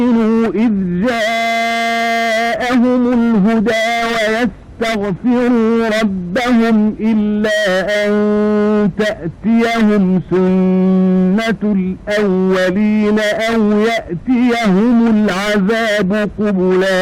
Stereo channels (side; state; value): both; identical; correlation 1.00